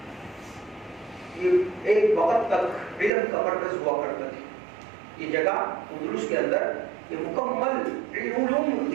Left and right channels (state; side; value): drops out; left; at 3.1 s